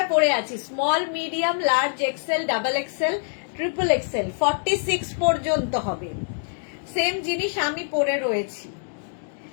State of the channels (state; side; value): silent; right; digital silence